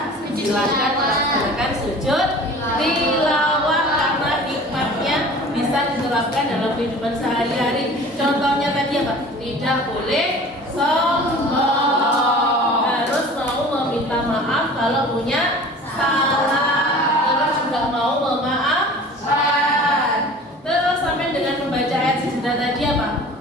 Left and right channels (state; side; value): normal; both; correlation 0.43